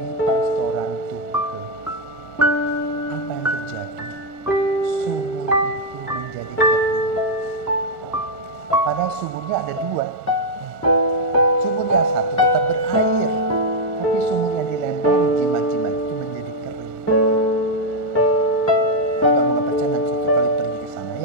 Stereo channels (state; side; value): normal; both; correlation -0.01